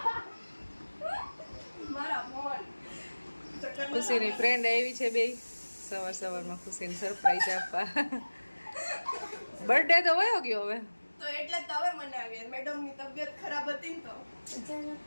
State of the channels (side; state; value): both; inverted; correlation -1.00